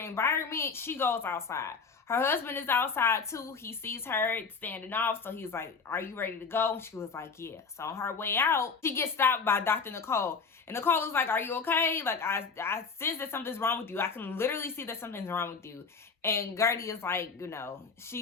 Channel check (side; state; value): right; quieter; 5.2 dB